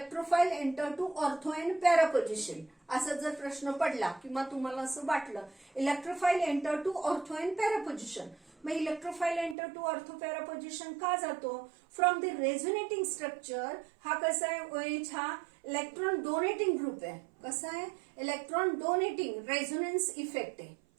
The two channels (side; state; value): left; drops out; at 9.6 s